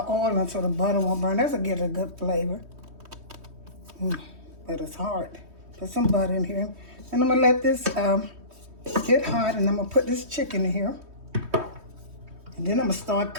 in so the butter won't burn. That'll get a good flavor. But it's hard. Put some butter in here. And I'm gonna let this get hot, and I'm gonna put this chicken in here. And then I'm gonna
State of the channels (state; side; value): late; left; 3.2 ms